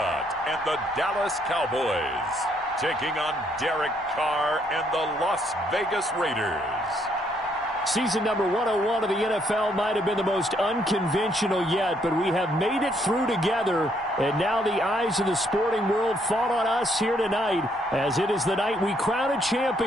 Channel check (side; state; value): both; normal; correlation 0.71